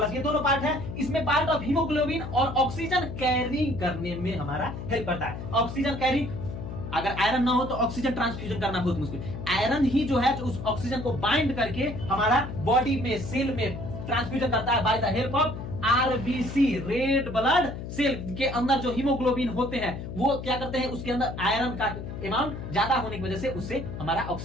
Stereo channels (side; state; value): left; noise; hum, 8 dB below the sound